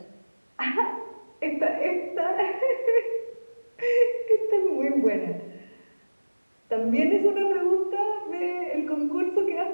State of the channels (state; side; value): inverted; both; correlation -1.00